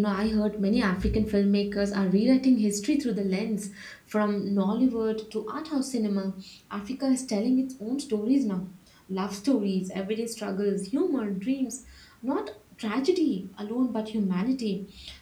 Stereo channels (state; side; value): identical; both; correlation 1.00